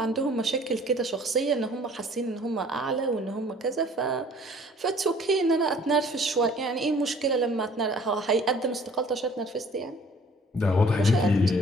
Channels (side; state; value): both; normal; correlation 0.54